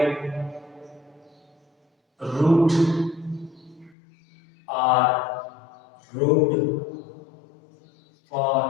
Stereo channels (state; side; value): drops out; right; at 4.0 s